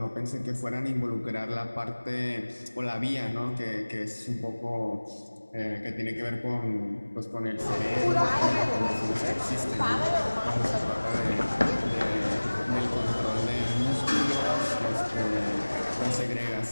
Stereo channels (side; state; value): both; inverted; correlation -1.00